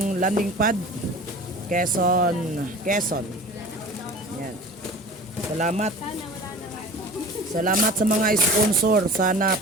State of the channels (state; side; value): normal; both; correlation 0.39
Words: pad Quezon. Yan. Salamat. Salamat sa mga sponsor. Sana